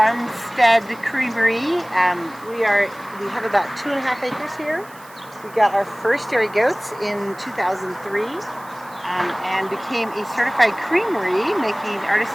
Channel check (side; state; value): right; noise; hiss, 23 dB below the sound